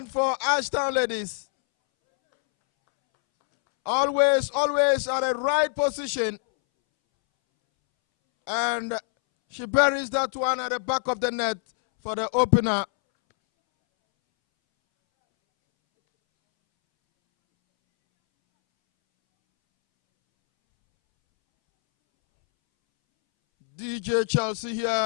for Ashtown ladies. Always at the right position. And she buries that one at the back of the net for the opener. DJ Chelsea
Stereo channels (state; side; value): silent; right; 62 dB below the other